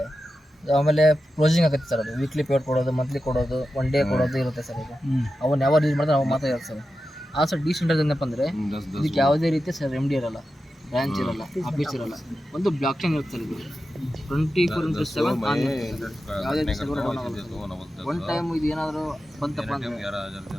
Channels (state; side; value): normal; both; correlation 0.91